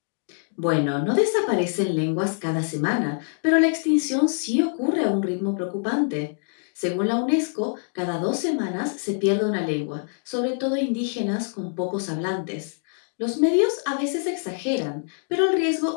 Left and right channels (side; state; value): right; silent; 62 dB below the other